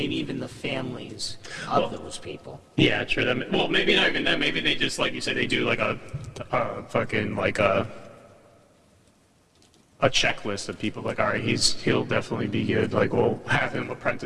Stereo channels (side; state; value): both; identical; correlation 1.00